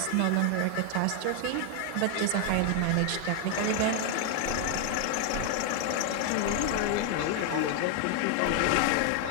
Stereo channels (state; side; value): different; both; correlation 0.00